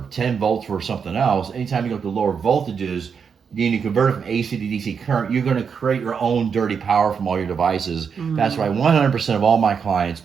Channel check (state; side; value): quieter; left; 6.4 dB